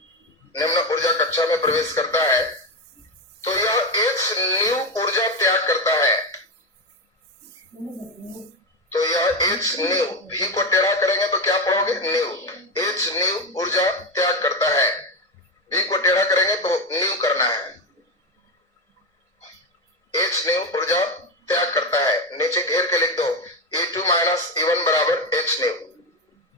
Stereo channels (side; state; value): both; normal; correlation 0.13